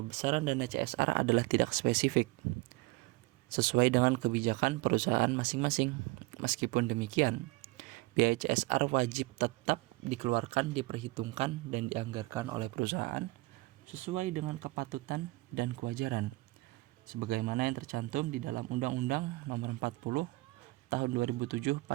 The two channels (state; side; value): quieter; left; 22.3 dB